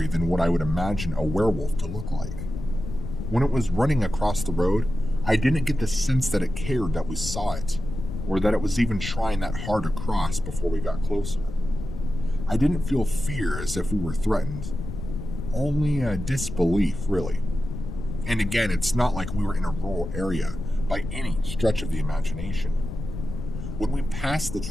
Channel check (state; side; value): noise; left; rumble, 7 dB below the sound